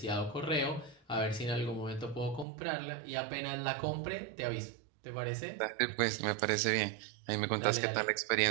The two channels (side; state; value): left; drops out; at 2.5 s